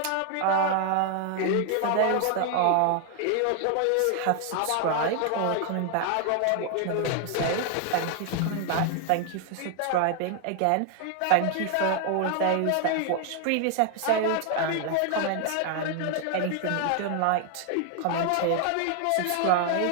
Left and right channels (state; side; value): different; both; correlation 0.00